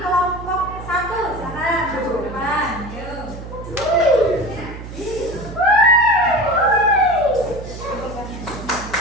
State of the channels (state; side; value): noise; right; hum, 12 dB below the sound